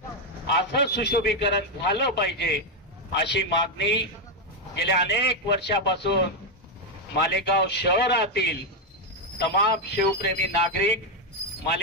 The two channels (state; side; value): normal; both; correlation 0.03